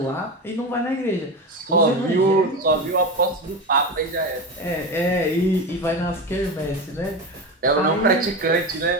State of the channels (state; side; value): normal; both; correlation 0.21